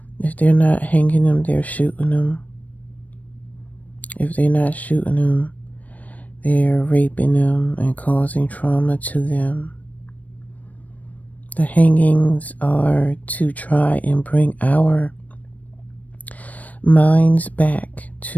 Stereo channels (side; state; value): right; late; 0.072 ms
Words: if they're not hanging them, they're shooting them. If they're not shooting them, they're raping them and causing trauma to them. The hangings are to try and bring our minds back